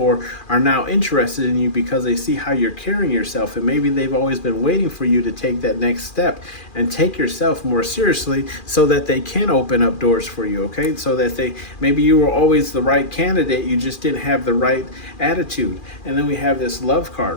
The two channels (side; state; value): right; late; 2.4 ms